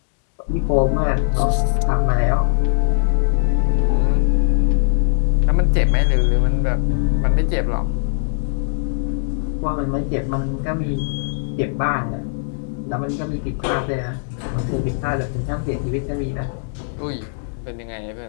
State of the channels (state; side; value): silent; right; digital silence